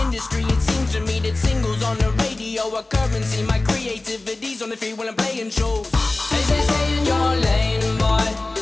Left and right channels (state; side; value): quieter; right; 3.0 dB